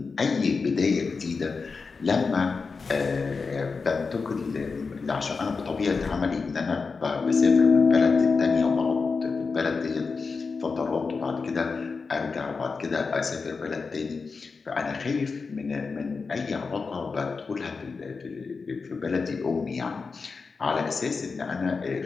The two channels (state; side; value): quieter; right; 4.7 dB